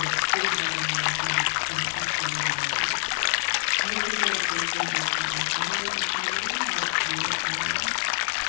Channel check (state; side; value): silent; right; digital silence